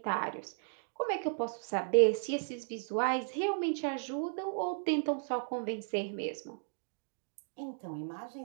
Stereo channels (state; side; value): silent; left; digital silence